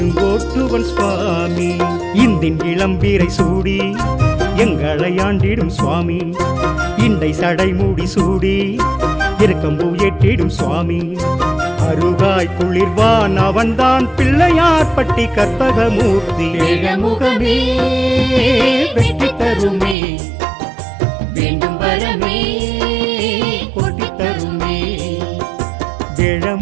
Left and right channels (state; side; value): drops out; left; at 20.0 s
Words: சுவாமி. இந்தின் இளம்பீரை சூடி எங்களை ஆண்டிடும் சுவாமி. இண்டை சடை மூடி சூடி இருக்கம்பூ ஏற்றிடும் சுவாமி. அருகாய் குளிர்வான் அவன்தான் பிள்ளையார் பட்டி கற்பகமூர்த்தி. வேழமுகமே வெற்றி தருமே, வேண்டும் வரமே கொட்டி தருமே.